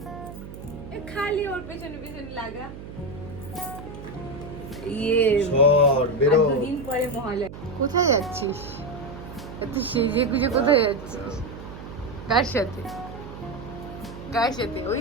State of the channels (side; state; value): right; noise; hum, 13 dB below the sound